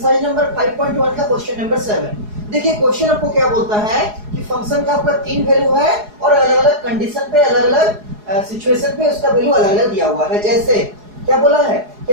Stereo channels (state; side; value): late; left; 4.8 ms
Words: नंबर 5.1 का क्वेश्चन नंबर 7। देखिए क्वेश्चन आपको क्या बोलता है कि फंक्शन का आपका 3 वैल्यू है और अलग अलग कंडीशन पे, अलग अलग सिचुएशन पे उसका वैल्यू अलग अलग दिया हुआ है। जैसे क्या बोला है कि